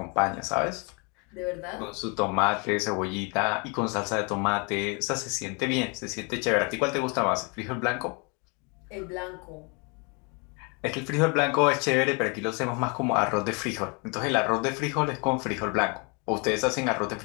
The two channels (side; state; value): right; quieter; 32.7 dB